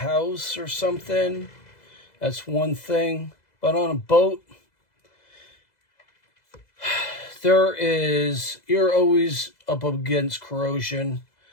or something. That's one thing. But on a boat, you're always up against corrosion.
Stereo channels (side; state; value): right; late; 2.0 ms